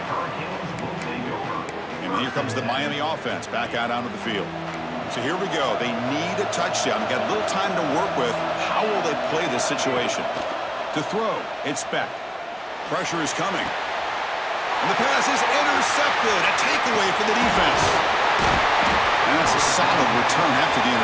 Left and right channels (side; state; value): both; identical; correlation 1.00